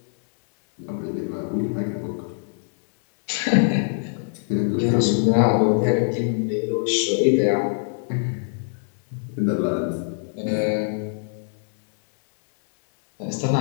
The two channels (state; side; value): silent; right; digital silence